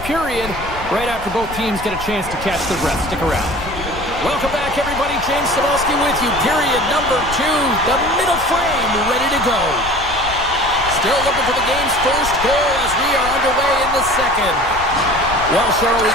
period right after both teams get a chance to catch their breath. Stick around. Welcome back, everybody. James Cebulski with you. Period number 2. The middle frame ready to go. Still looking for the game's first goal as we are underway in the second. Well, Cheryl, we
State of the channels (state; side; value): noise; left; rumble, 12 dB below the sound